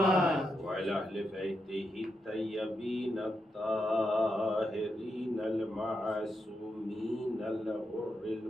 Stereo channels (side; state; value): both; normal; correlation 0.84